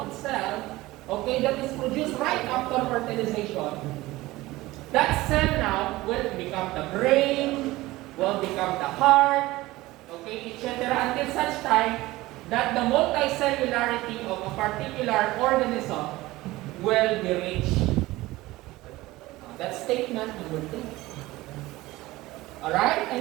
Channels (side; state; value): left; quieter; 18.7 dB